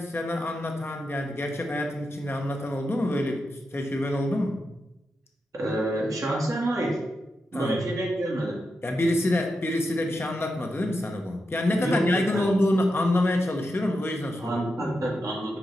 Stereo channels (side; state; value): both; normal; correlation 0.87